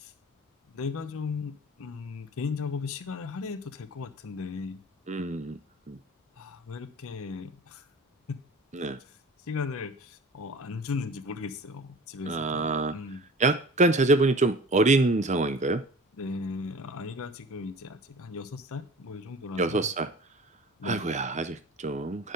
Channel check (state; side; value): normal; both; correlation 0.41